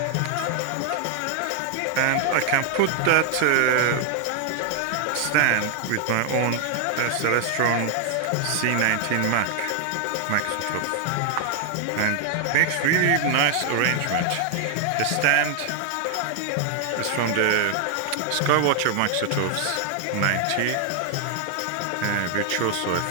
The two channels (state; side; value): different; both; correlation 0.00